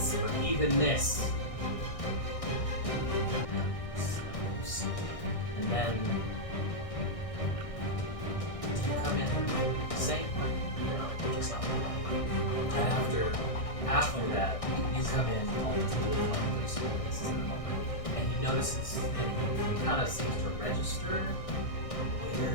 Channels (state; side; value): late; right; 1.6 ms